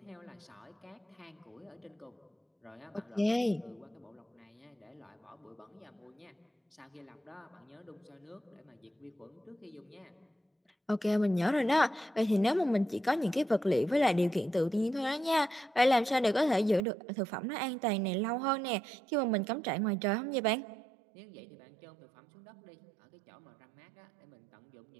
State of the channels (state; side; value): drops out; left; at 16.8 s